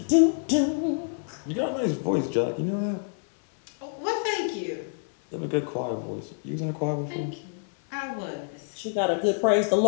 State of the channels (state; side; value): silent; right; 60 dB below the other